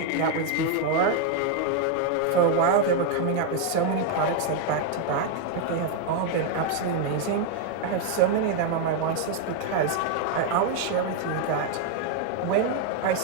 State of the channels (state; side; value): different; both; correlation 0.00